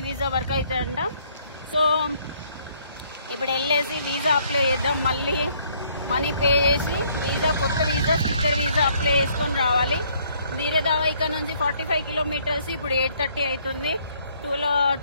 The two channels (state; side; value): inverted; both; correlation -0.65